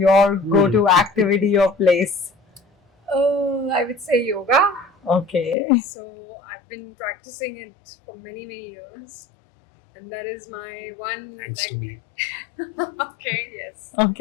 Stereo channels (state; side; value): drops out; right; at 5.6 s